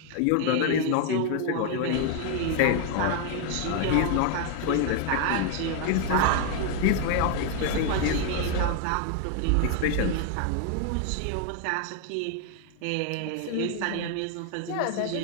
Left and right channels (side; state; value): both; different; correlation 0.00